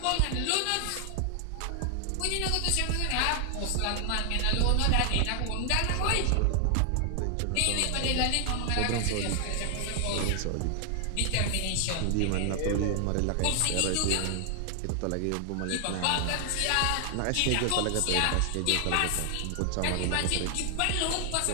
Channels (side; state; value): both; different; correlation 0.00